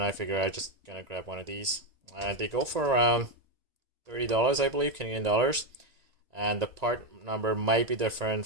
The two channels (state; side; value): late; left; 1.9 ms